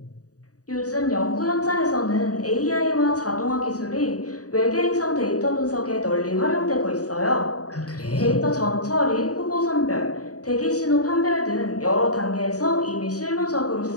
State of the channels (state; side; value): late; right; 0.67 ms